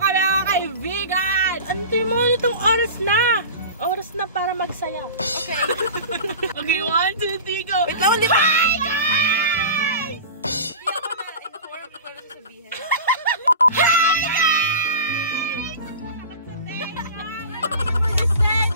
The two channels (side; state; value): both; inverted; correlation -0.33